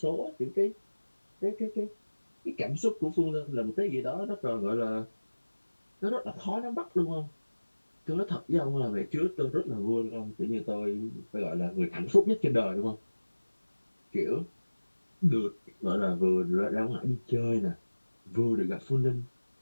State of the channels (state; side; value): inverted; both; correlation -1.00